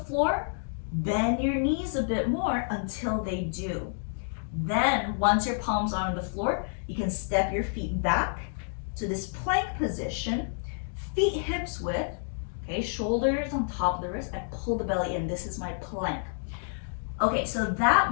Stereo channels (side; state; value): right; silent; digital silence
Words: floor, bend your knees a bit more until they do. Then, once your palms are on the floor, you can step your feet back to this plank position, feet hips width. Okay, shoulders on top of the wrist, I pull the belly in. This is my plank. Okay, so